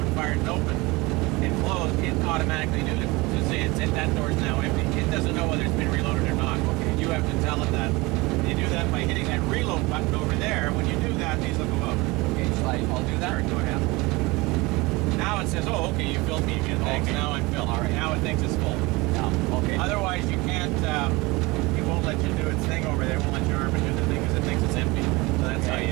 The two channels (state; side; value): quieter; left; 23.4 dB